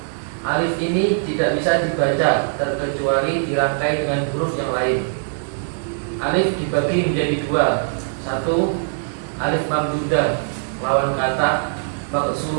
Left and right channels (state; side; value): silent; left; 65 dB below the other